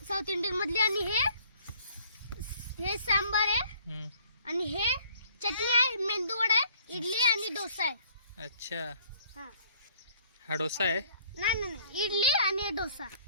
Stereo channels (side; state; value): both; inverted; correlation -0.59